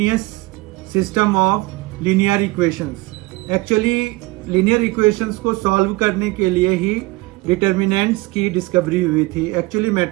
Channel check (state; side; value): quieter; left; 21.9 dB